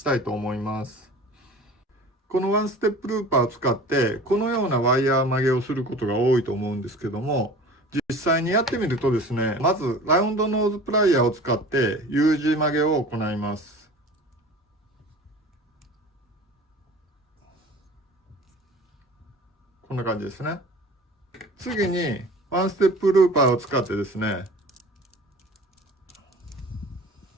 たいと思います。このワンステップルーパーを使って、このようなワイヤー曲げをすることが多いと思うんですけども、実際にやってみるとですね、まずラウンドノーズプライヤーを使って U 字曲げを行います。こんな感じですね。次に、ワンステップルーパーを使ってですね、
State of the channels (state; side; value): normal; both; correlation 0.41